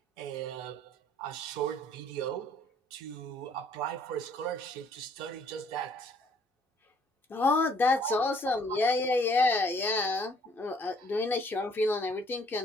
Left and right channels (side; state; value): both; normal; correlation 0.62